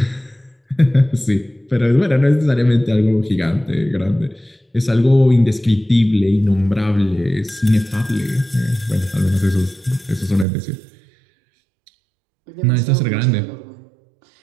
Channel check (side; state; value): left; drops out; at 10.5 s